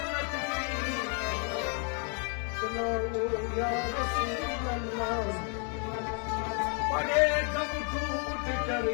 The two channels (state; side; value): quieter; right; 38.9 dB